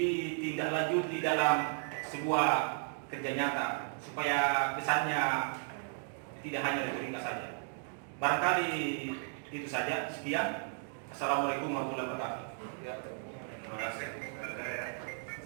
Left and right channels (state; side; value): silent; left; 55 dB below the other